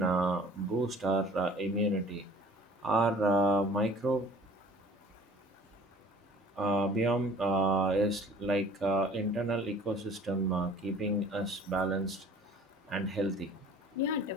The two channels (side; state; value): both; normal; correlation 0.49